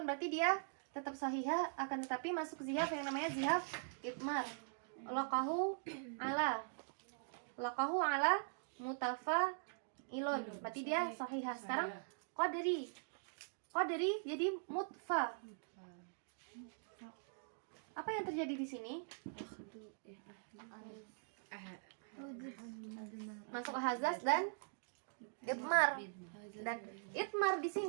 berarti dia tetap sahihah, akan tetapi masuk zihaf yang namanya zihaf itmar. Laqahu ala mutafa ilun, berarti dia sahihah. Sekarang qadri jadi mutfa. Apa yang terjadi di sini? Masuk hazaz dan itmar. Dan itmar di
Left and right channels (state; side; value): silent; left; digital silence